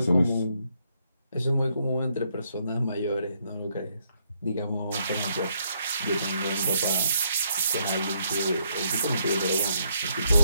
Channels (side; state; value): both; inverted; correlation -0.74